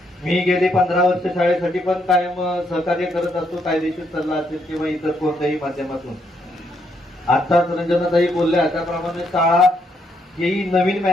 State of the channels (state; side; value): normal; both; correlation 0.75